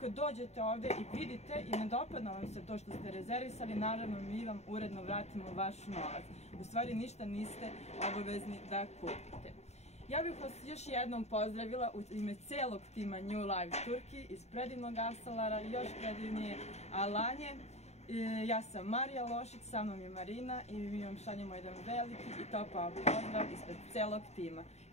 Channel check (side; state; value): right; late; 0.32 ms